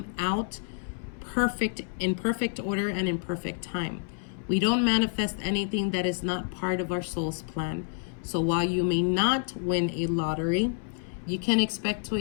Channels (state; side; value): silent; right; 59 dB below the other